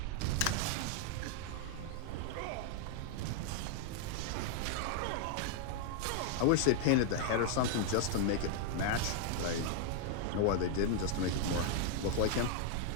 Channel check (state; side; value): different; both; correlation 0.00